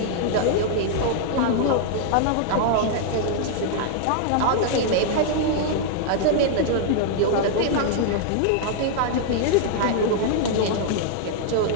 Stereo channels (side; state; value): both; different; correlation 0.00